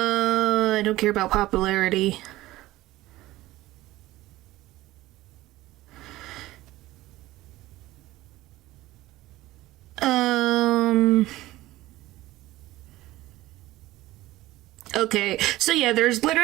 don't care about popularity. Okay, so yeah, there's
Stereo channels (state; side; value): quieter; left; 17.1 dB